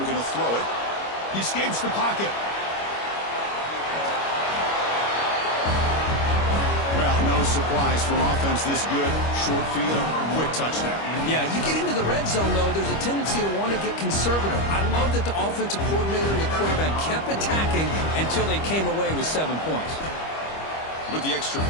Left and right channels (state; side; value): late; right; 25 ms